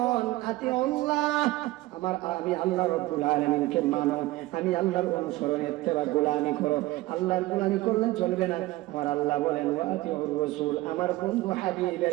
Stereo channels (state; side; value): quieter; left; 18.4 dB